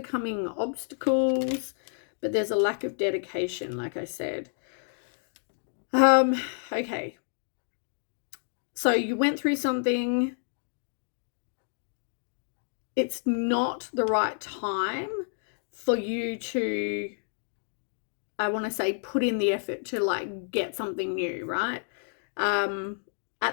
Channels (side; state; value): right; silent; digital silence